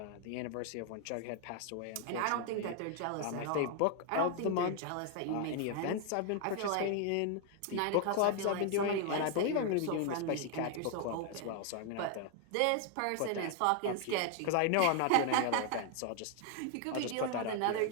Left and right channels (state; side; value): different; both; correlation 0.00